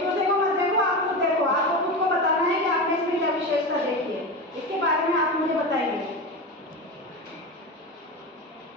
दूसरे को मत देखो, आप खुद देखो, आपको खुद को बताना है कि आपने इसमें क्या विशेषता देखी है, इसके बारे में आप मुझे बताएंगे।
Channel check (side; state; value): both; normal; correlation 0.23